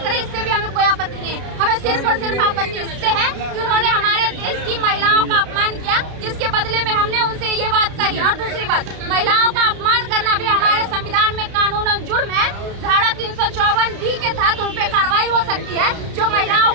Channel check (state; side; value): late; left; 32 ms